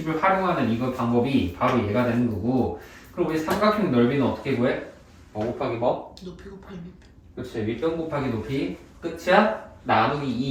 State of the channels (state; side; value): identical; both; correlation 1.00